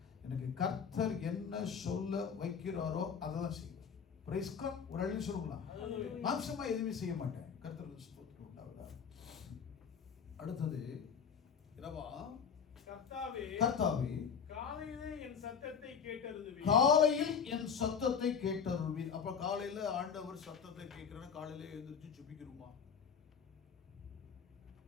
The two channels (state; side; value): quieter; right; 6.7 dB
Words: எனக்கு கர்த்தர் என்ன சொல்ல வைக்கிறாரோ அதை தான் செய்வேன். பிரைஸ் காட். ஒரு அள்ளி சொல்லுங்களா. மாம்சமா எதுவுமே செய்ய மாட்டேன். கர்த்தர் ஸ்தோத்திரம் உண்டாவதா. அடுத்தது என்னவா? கர்த்தாவே, காலையில் என் சத்தத்தை கேட்டருள்வீர். அப்ப காலையில ஆண்டவர் சத்தத்தை கேட்கிறேன்னா காலையில எழுந்திரிச்சு ஜெபிக்கிறோமா?